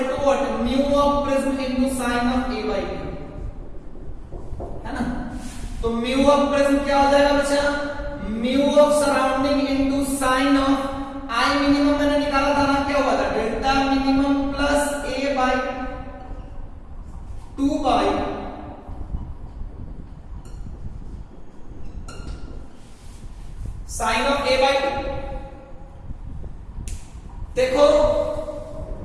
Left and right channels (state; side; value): identical; both; correlation 1.00